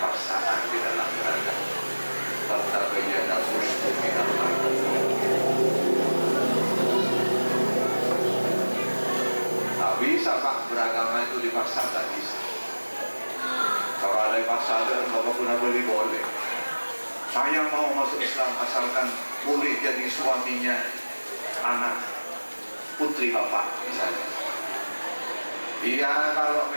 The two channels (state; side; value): inverted; both; correlation -1.00